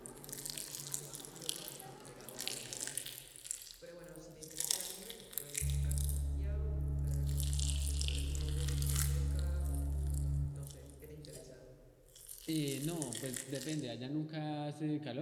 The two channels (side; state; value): both; identical; correlation 1.00